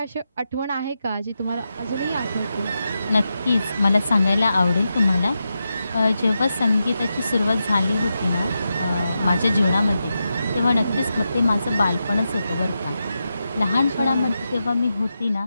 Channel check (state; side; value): inverted; both; correlation -0.88